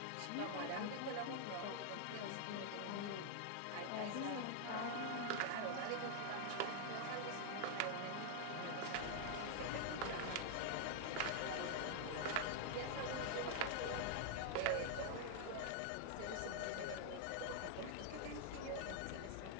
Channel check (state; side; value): different; both; correlation -0.01